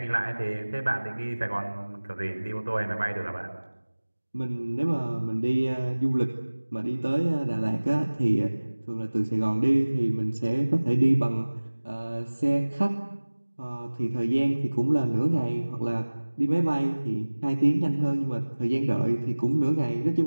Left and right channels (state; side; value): inverted; both; correlation -1.00